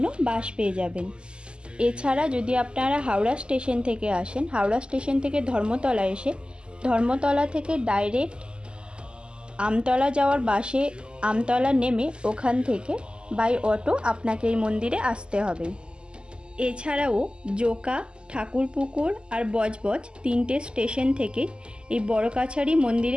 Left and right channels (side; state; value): left; late; 0.049 ms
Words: বাস পেয়ে যাবেন। এছাড়া যদি আপনারা হাওড়া স্টেশন থেকে আসেন, হাওড়া স্টেশন থেকে ধর্মতলা এসে ধর্মতলা থেকে ডাইরেক্ট আমতলা যাওয়ার বাসে আমতলা নেমে ওখান থেকে বাই অটো আপনাকে এই মন্দিরে আসতে হবে। এছাড়াও জোকা, ঠাকুরপুকুর আর বজবজ তিনটে স্টেশন থেকে এই বড় কাছারি